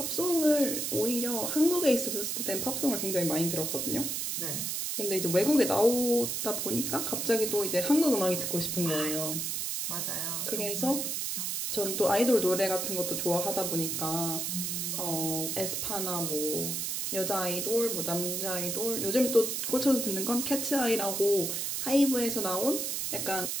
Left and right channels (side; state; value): right; noise; hiss, 1 dB below the sound